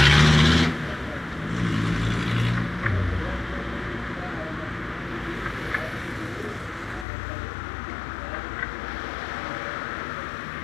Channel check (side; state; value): right; drops out; at 7.1 s